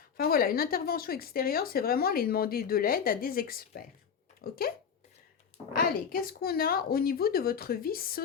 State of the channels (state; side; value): quieter; right; 7.0 dB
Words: Enfin voilà, une intervention extérieure, c'est vraiment aller demander de l'aide à des experts. Ok? Allez, qu'est-ce qu'on a au niveau de votre vie